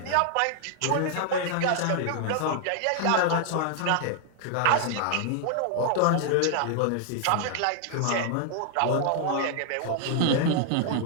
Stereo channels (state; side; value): different; both; correlation -0.01